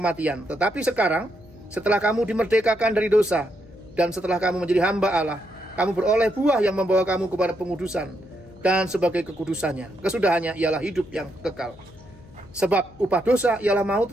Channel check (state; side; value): noise; left; hum, 23 dB below the sound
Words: Tetapi sekarang, setelah kamu dimerdekakan dari dosa, dan setelah kamu menjadi hamba Allah, kamu beroleh buah yang membawa kamu kepada pengudusan. Dan sebagai kekudusannya, kesudahannya ialah hidup yang kekal. Sebab upah dosa ialah maut,